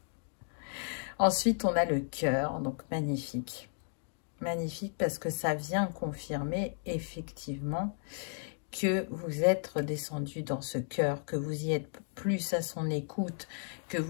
Ensuite, on a le cœur, donc magnifique. Magnifique parce que ça vient confirmer effectivement que vous êtes redescendu dans ce cœur, que vous y êtes plus à son écoute, que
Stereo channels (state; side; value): silent; right; 55 dB below the other